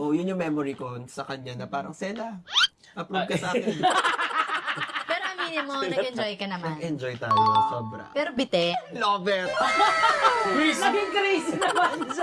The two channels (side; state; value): both; identical; correlation 1.00